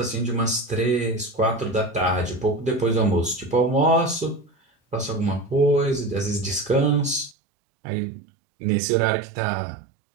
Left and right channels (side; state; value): left; drops out; at 7.4 s